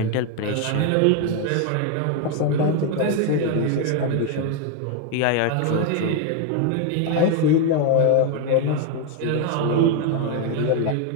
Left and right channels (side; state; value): both; different; correlation 0.01